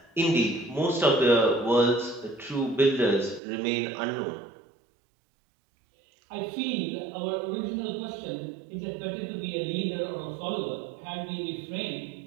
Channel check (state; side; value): drops out; left; at 3.4 s